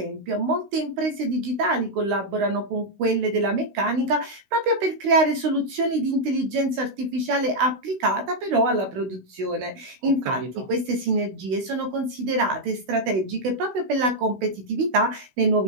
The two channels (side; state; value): left; late; 16 ms